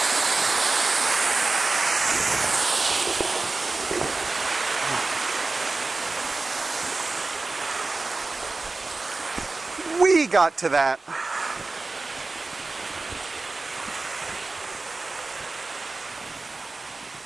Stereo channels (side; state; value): left; quieter; 3.5 dB